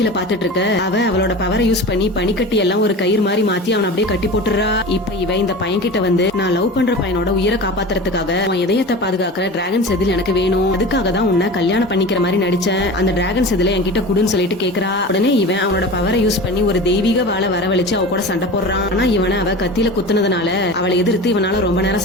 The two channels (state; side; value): normal; both; correlation 0.32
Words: பாத்துட்டு இருக்க அவளோட பவரை யூஸ் பண்ணி பனிக்கட்டி எல்லாம் ஒரு கயிறு மாதிரி மாத்தி அவன் அப்படியே கட்டி போட்டுறா. இப்ப இவன் இந்த பையன் கிட்ட வந்து நான் லவ் பண்ற பையனோட உயிரை காப்பாத்துறதுக்காக அவன் இதயத்தை பாதுகாக்கிற டிராகன் செதில் எனக்கு வேணும், அதுக்காக தான் உன்னை கல்யாணம் பண்ணிக்கிற மாதிரி நடிச்சேன், அந்த டிராகன் செதில என்கிட்ட குடுன்னு சொல்லிட்டு கேக்குறா. உடனே இவன் அவனோட பவரை யூஸ் பண்ணி ஒரு தெய்வீக வாழை வரவழைச்சு அவ கூட சண்டை போடுறான். ஆனா இவனை அவ கத்தியில குத்துனதுனால அவளை எதிர்த்து இவனால ரொம்ப நேரம்